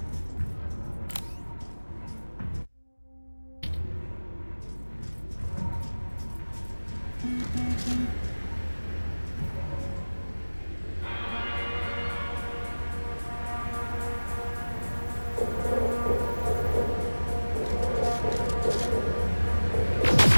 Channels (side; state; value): both; inverted; correlation -1.00